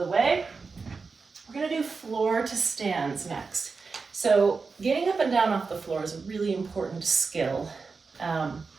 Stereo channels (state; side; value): quieter; left; 4.6 dB